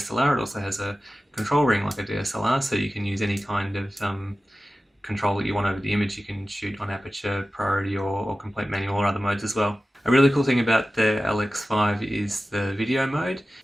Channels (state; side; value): normal; both; correlation 0.95